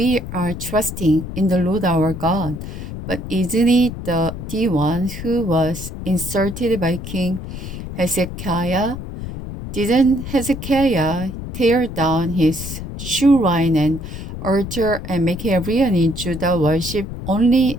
are trusting in the Lord our God. But isn't it the one who was inserted by King Hezekiah? Didn't Hezekiah tear down his shrine and altar and make everyone in Judah worship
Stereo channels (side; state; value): left; noise; rumble, 8 dB below the sound